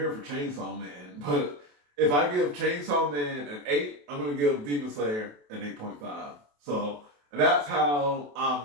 for Chainsaw Man, but if I give Chainsaw Man an 8, I'm gonna give Demon Slayer an 8.5. So that's how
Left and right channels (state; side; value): late; left; 28 ms